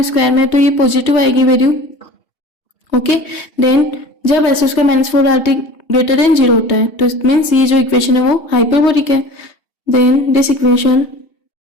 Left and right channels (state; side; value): late; right; 2.7 ms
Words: स्क्वायर में, तो ये पॉजिटिव आएगी वैल्यू। ओके, देन जब S square minus four R T greater than 0 होता है तो इट मीन्स ये जो इक्वेशन है वो हाइपरबोलिक है। Then this equation